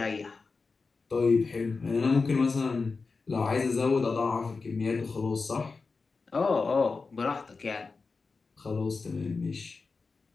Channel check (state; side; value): quieter; right; 4.3 dB